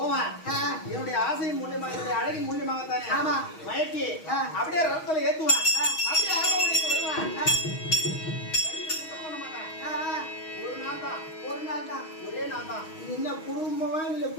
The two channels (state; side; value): late; right; 6.3 ms